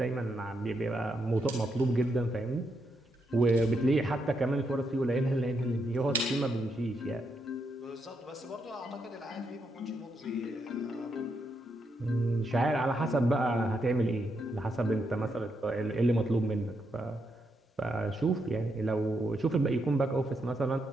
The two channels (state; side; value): normal; both; correlation 0.80